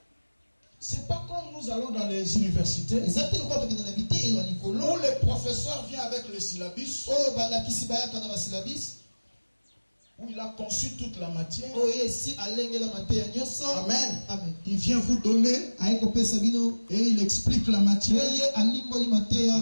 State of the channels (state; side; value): inverted; both; correlation -1.00